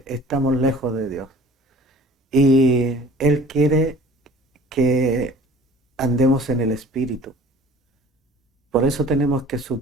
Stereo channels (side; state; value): both; normal; correlation 0.47